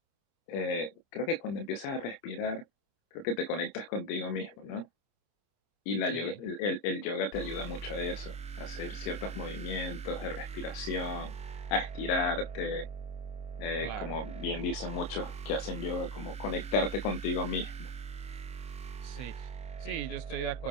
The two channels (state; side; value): late; right; 26 ms